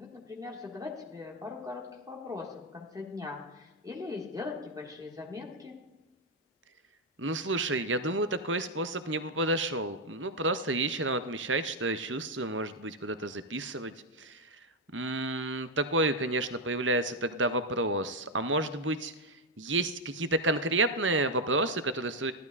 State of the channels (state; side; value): normal; both; correlation 0.03